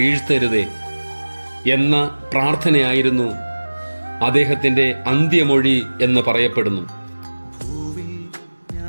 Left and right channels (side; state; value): both; inverted; correlation -1.00